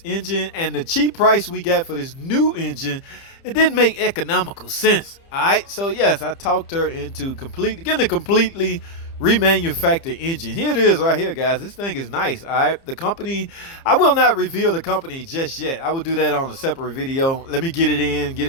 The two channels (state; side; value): late; right; 30 ms